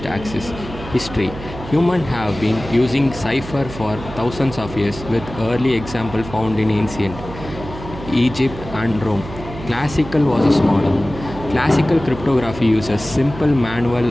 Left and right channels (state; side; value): noise; right; hum, 12 dB below the sound